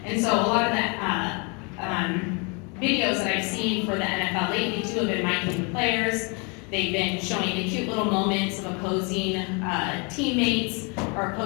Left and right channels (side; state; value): right; quieter; 32.7 dB